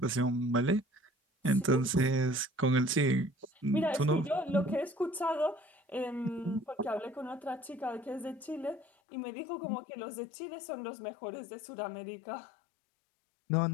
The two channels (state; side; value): drops out; right; at 8.8 s